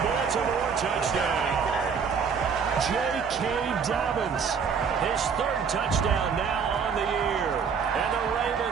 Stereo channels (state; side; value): quieter; left; 6.2 dB